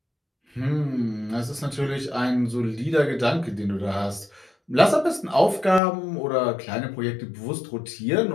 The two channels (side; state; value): right; drops out; at 5.8 s